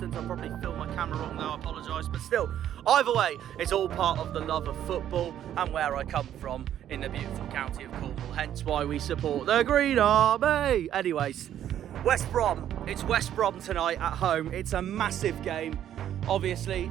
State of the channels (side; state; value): left; quieter; 10.8 dB